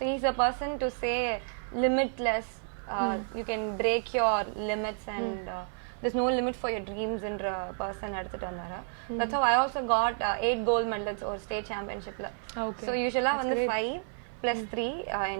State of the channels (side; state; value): left; silent; 57 dB below the other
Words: he's a person to say limitless. You can break your limits and there's no limit for your dreams in a person எடுத்துட்டு வந்தாரு. That's how I also got 8 gold medals or state championshipல. So usually வந்து 5 plus 3